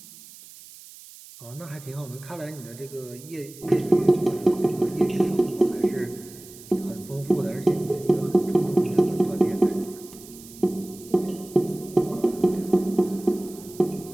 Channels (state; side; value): noise; right; hiss, 19 dB below the sound